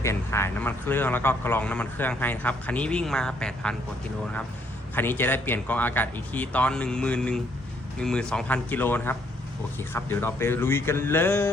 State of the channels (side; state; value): both; normal; correlation 0.68